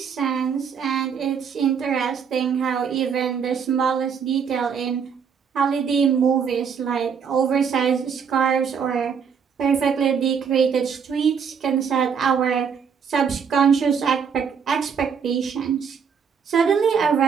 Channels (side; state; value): left; quieter; 6.7 dB